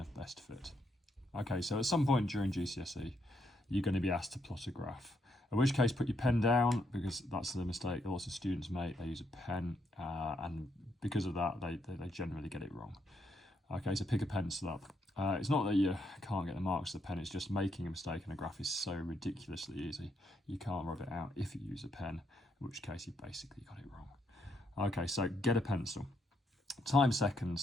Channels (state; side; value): normal; both; correlation 0.76